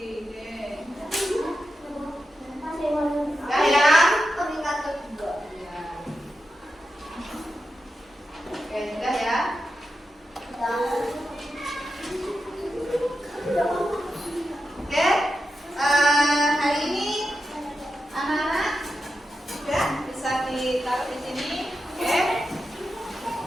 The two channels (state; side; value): normal; both; correlation 0.89